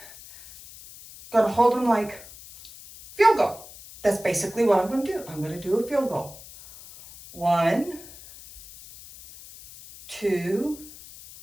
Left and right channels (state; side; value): noise; left; hiss, 18 dB below the sound